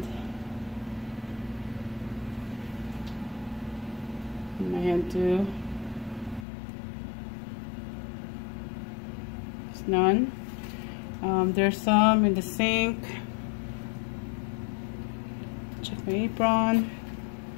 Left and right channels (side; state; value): right; drops out; at 6.5 s